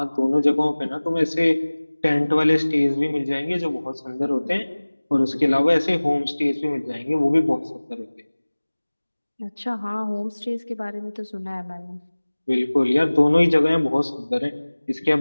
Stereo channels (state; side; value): inverted; both; correlation -1.00